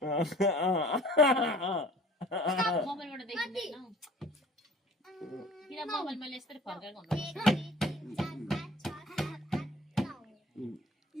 मोबाइलबाट देखिँदैन किन मोबाइल मैले यस्तै फर्काएको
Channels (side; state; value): both; normal; correlation 0.49